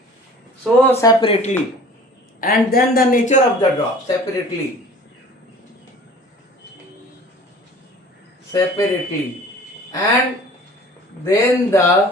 So separately. And then the nature of the drop separately. And then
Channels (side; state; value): both; normal; correlation 0.46